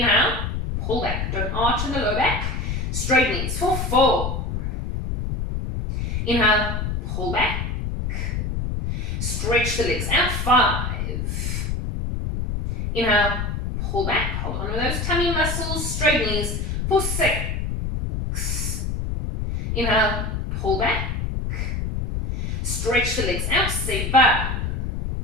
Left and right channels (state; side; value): noise; left; rumble, 2 dB below the sound